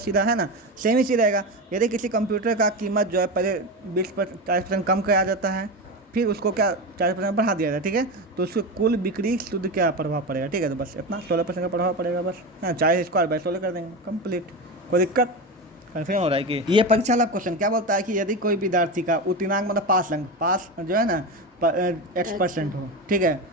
सीधा, है ना। सेम ही चीज़ रहेगा। यदि किसी कंप्यूटर का कीमत जो है पहले 40% कम कराया जाता है, फिर उसको क्या 40% बढ़ा दिया जाता है, ठीक है। तो उसको कुल बिक्री शुद्ध क्या प्रभाव पड़ेगा, ठीक है। तो बस इतना 16% का प्रभाव पड़ेगा, बस, हाँ। 40² बाय 16 कर देंगे, कंप्लीट। कोई दिक्कत? कन्फर्म हो रहा है कि ये परीक्षा वाला क्वेश्चन क्या बोलता है कि यदि कोई विद्यार्थी का उत्तीर्णांक मतलब पास जो है ना x% हो, ठीक है,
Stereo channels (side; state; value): both; normal; correlation 0.20